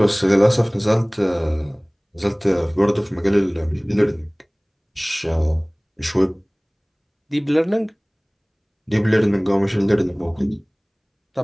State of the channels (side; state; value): both; identical; correlation 1.00